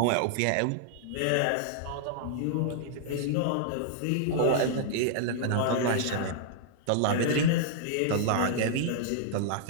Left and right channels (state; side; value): different; both; correlation -0.01